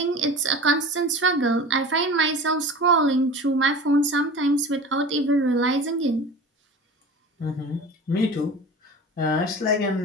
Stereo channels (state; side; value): normal; both; correlation 0.36